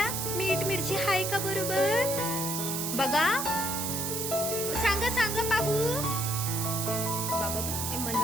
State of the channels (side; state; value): right; noise; hiss, 2 dB below the sound